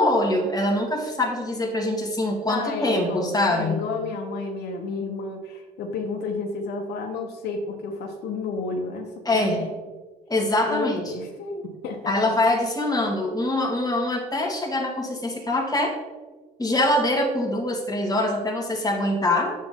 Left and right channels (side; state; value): both; normal; correlation 0.48